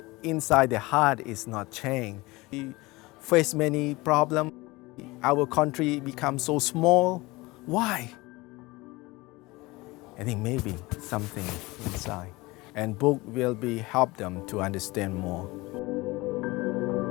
inside the heart is not changed, we face many problems. Our country becomes so small. Why? I think maybe something inside, and book will be help them to understand more.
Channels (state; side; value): quieter; right; 22.0 dB